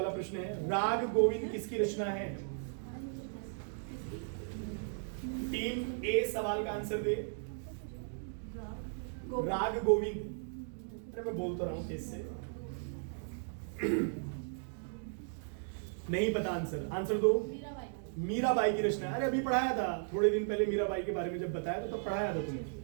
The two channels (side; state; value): left; silent; digital silence